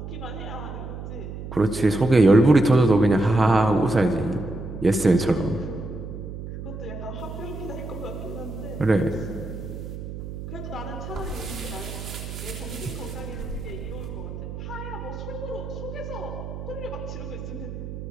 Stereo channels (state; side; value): noise; right; hum, 9 dB below the sound